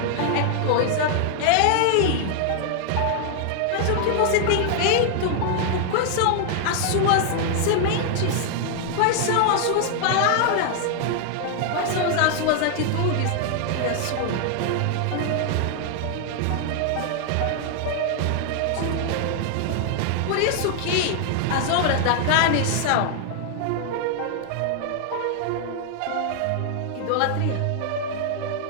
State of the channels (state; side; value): different; both; correlation 0.00